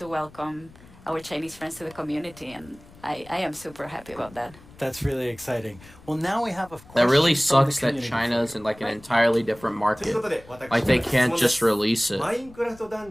welcome our Chinese friends to the community, and I am super happy about that. That's really exciting. Well, now we have a That really question from the sucks that community. China's in like an entirely different market. Like they can't just release it. マインクラフトダ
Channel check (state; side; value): noise; left; rumble, 22 dB below the sound